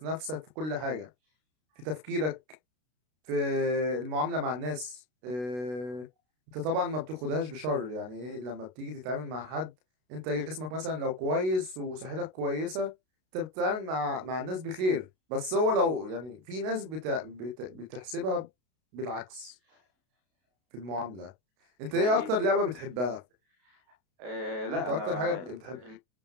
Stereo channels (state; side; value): late; left; 32 ms